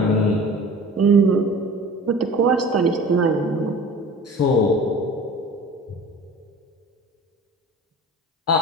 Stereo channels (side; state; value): both; normal; correlation 0.40